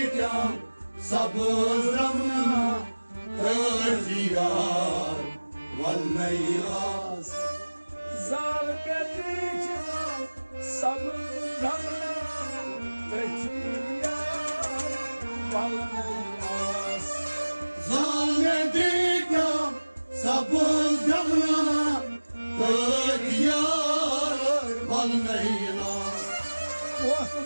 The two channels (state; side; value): inverted; both; correlation -1.00